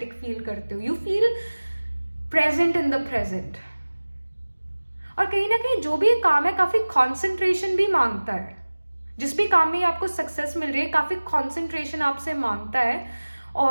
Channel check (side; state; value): both; inverted; correlation -1.00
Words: फील करते हो. You feel present in the present. और कहीं ना कहीं जो भी काम है काफी कॉन्सेंट्रेशन भी मांगता है. जिस भी काम में आपको सक्सेस मिल रही है, काफी कॉन्सेंट्रेशन आपसे मांगता है.